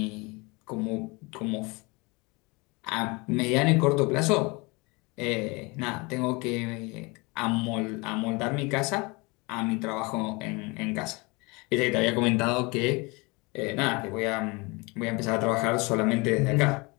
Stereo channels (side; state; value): right; quieter; 26.9 dB